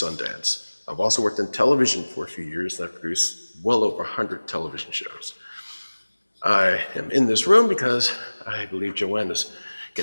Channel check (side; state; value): both; inverted; correlation -1.00